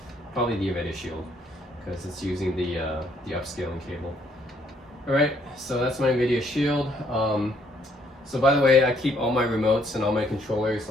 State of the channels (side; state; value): both; normal; correlation 0.67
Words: Probably the NVIDIA Shield, because it's using the upscaling cable. Alright, so that's my NVIDIA Shield. So by the way, I keep all my remotes and all my controllers